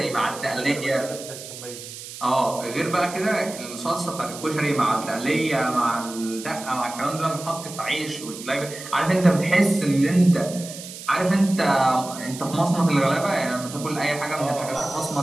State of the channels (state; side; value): noise; right; hiss, 12 dB below the sound